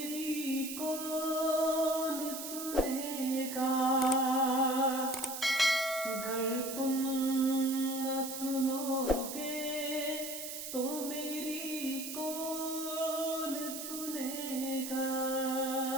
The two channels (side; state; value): right; noise; hiss, 7 dB below the sound